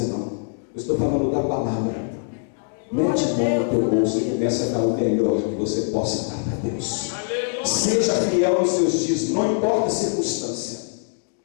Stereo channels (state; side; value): silent; right; 63 dB below the other